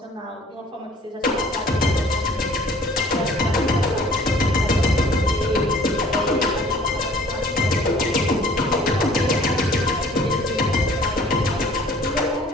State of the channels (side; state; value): both; normal; correlation 0.53